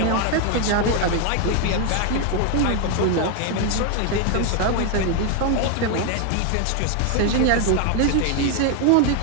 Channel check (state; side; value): different; both; correlation 0.01